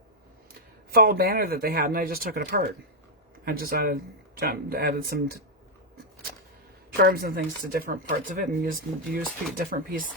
fall banner that they had, and I just took it apart. I just added some charms and things to different parts of it, and used different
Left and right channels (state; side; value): normal; both; correlation -0.03